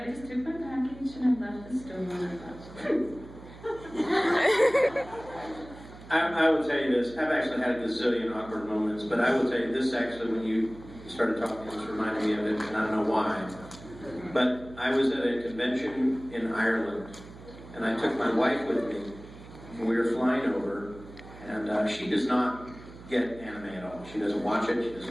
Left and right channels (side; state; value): right; noise; hum, 17 dB below the sound